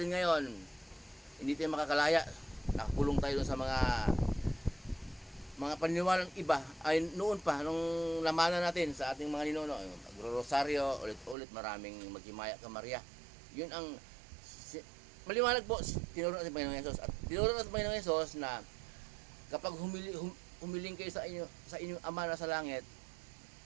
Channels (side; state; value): left; drops out; at 11.4 s